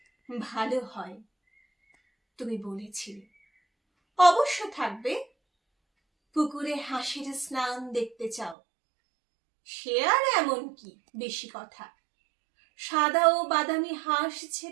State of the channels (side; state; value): left; drops out; at 8.6 s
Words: ভালো হয়, তুমি বলেছিলে। অবশ্য থাকবে। পুকুরে হাঁসের স্নান দেখতে চাও, সে আর এমন কি বেশি কথা। সাদা ও বাদামি হাঁস